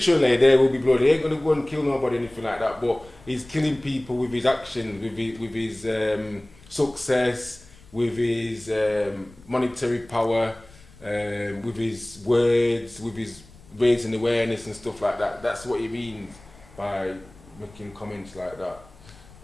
there will be blood. He ain't gonna go and kill nobody, anything like that. But he's killing people with his actions, with his success, with his monetary power, with his words, with his raising awareness and stuff like that. That's what he means by making comments like that.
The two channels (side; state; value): left; noise; rumble, 23 dB below the sound